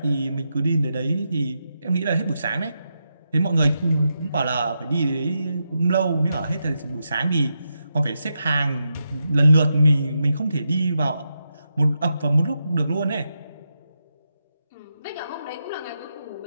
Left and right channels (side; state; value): both; inverted; correlation -0.85